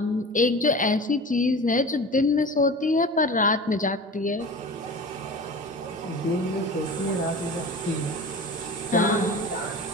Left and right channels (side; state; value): both; normal; correlation 0.35